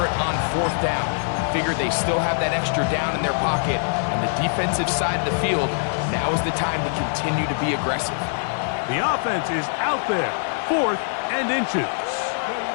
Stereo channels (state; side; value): silent; right; digital silence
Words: it on 4th down. Figured they still have that extra down in their pocket. On the defensive side of the field, now is the time to continue to be aggressive. The offense is out there, 4th and inches.